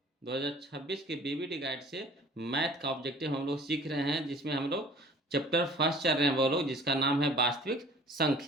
2026 के बीबीडी गाइड से मैथ का ऑब्जेक्टिव हम लोग सीख रहे हैं, जिसमें हम लोग चैप्टर फर्स्ट चल रहे हैं वो लोग, जिसका नाम है वास्तविक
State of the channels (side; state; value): both; normal; correlation 0.50